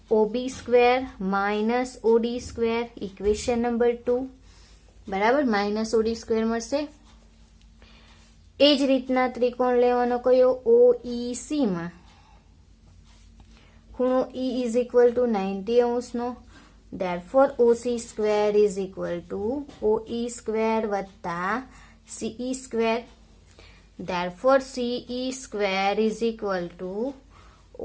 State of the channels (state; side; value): identical; both; correlation 1.00